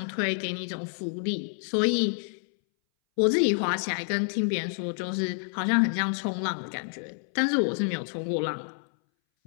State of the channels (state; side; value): silent; right; 59 dB below the other